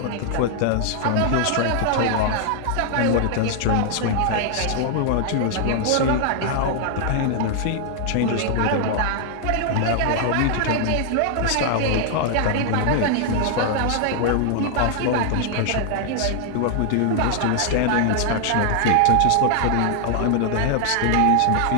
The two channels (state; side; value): different; both; correlation 0.00